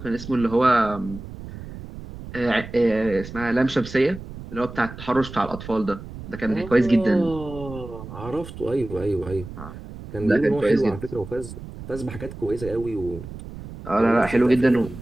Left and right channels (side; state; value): right; noise; rumble, 13 dB below the sound